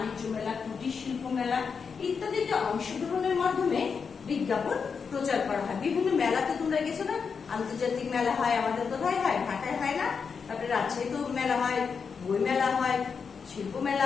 মেলা, কুটির শিল্প মেলা ইত্যাদিতে অংশগ্রহণের মাধ্যমে বিজ্ঞাপন প্রচার করা হয়। বিভিন্ন মেলাতে তোমরা গেছো না? আন্তর্জাতিক মেলা হয়, আমাদের কোথায় হয়? ঢাকায় হয় না? তারপরে রাজশাহীতে মেলা হয়, বই মেলা হয়, শিল্প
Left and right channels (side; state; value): right; quieter; 5.8 dB